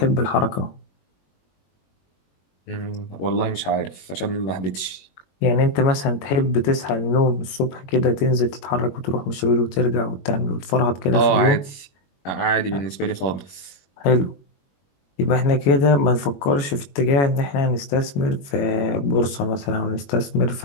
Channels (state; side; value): late; right; 21 ms